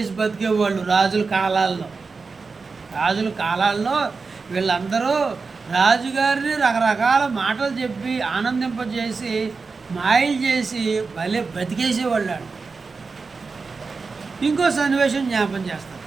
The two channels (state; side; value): quieter; left; 4.5 dB